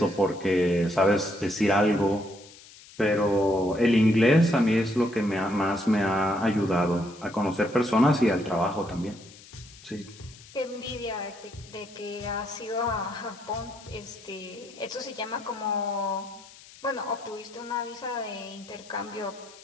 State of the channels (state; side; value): noise; left; hiss, 21 dB below the sound